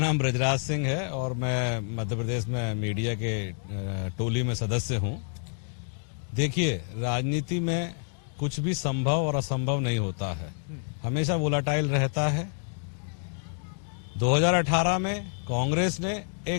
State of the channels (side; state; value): right; silent; 59 dB below the other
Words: ब्रजराज सिंह है और मैं मध्य प्रदेश में मीडिया के टोली में सदस्य हूं। देखिए, राजनीति में कुछ भी संभव और असंभव नहीं होता है, हमेशा वोलाटाइल रहता है। 2018 में कांग्रेस ने